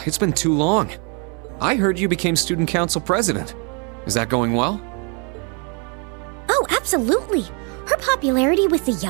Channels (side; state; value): left; quieter; 35.9 dB